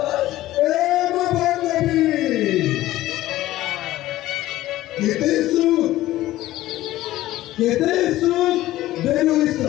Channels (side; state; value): right; quieter; 15.6 dB